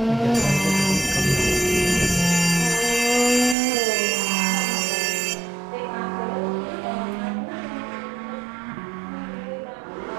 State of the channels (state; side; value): drops out; left; at 3.6 s